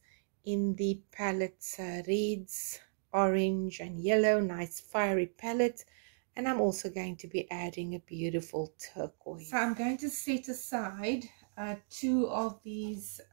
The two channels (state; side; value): silent; left; digital silence